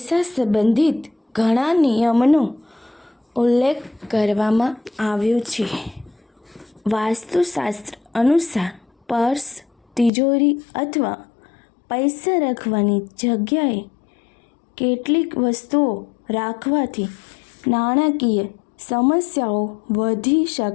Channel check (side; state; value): right; drops out; at 10.1 s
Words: સંબંધિત ઘણા નિયમોનો ઉલ્લેખ કરવામાં આવ્યો છે. વાસ્તુશાસ્ત્ર અનુસાર પર્સ, તિજોરી અથવા પૈસા રાખવાની જગ્યાએ કેટલીક વસ્તુઓ રાખવાથી નાણાકીય સમસ્યાઓ વધી